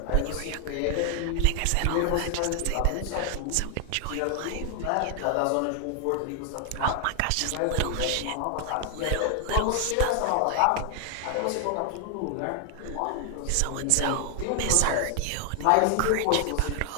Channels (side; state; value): both; different; correlation 0.00